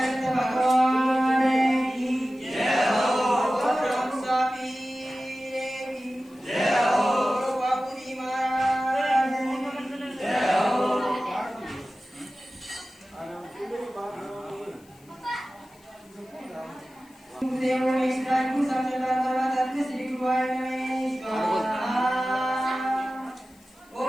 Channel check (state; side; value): noise; left; hiss, 29 dB below the sound